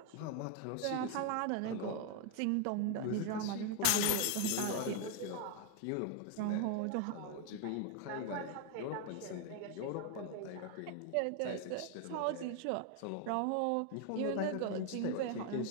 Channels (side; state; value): both; different; correlation 0.01